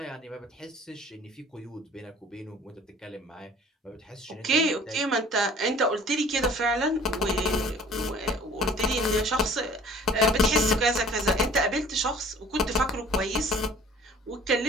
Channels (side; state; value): both; normal; correlation 0.50